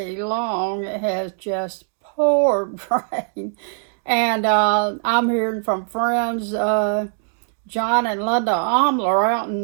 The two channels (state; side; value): silent; left; digital silence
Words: long. It has just poured rain. And I'm hearing from friends, John and Linda Omler out